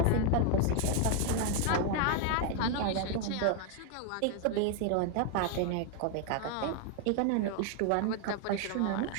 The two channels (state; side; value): different; both; correlation 0.01